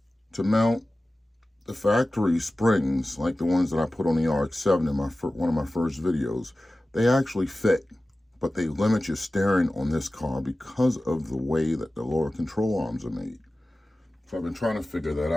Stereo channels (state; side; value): normal; both; correlation 0.96